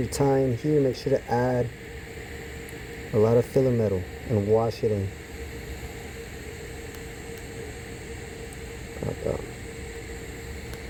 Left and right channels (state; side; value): identical; both; correlation 1.00